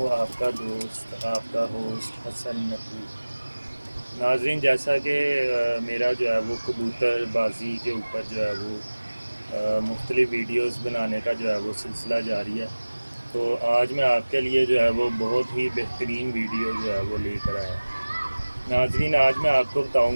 آپ کا دوست، آپ کا ہوسٹ حسن نقوی۔ ناظرین، جیسا کہ میرا جو ہے وہ کبوتر بازی کے اوپر جو ہے وہ مختلف ویڈیوز بنانے کا جو ہے وہ سلسلہ جاری ہے، تو آج میں آپ کے لیے جو ہے وہ بہت ہی بہترین ویڈیو جو ہے وہ لے کر آیا۔ ناظرین، آج میں آپ کو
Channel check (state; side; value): inverted; both; correlation -1.00